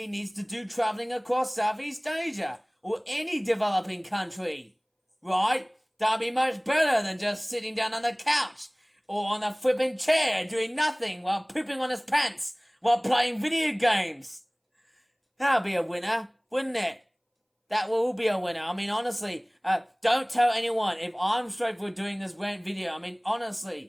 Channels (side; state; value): both; identical; correlation 1.00